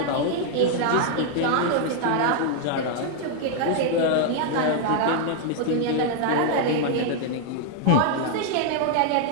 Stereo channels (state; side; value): different; both; correlation 0.00